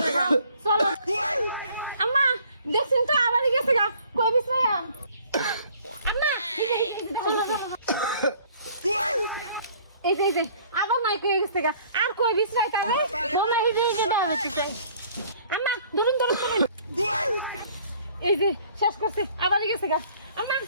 চলো আম্মা দেখছেন তো আবারই গেছে গা কই বিশ্রাম আম্মা এই যে আবার নাই কই গেছে গা আর কই বিশ্রাই তারে মনে এই যে দাও হচ্ছে আম্মা ধরুন এই যে শেষ করছে আবারই গেছে গা আম্মা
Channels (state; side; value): inverted; both; correlation -0.56